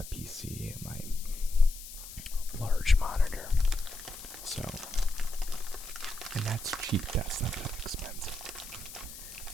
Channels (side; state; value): left; noise; hiss, 13 dB below the sound